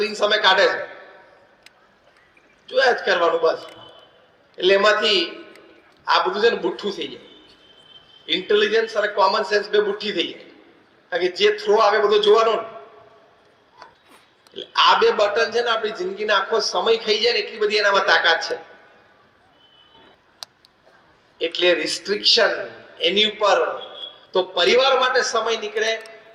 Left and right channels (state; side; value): identical; both; correlation 1.00